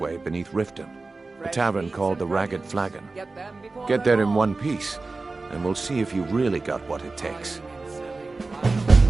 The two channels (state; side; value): quieter; left; 3.6 dB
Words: beneath Riften, a tavern called the Ragged Flagon. Get there in one piece, and we'll see if you really got what it takes.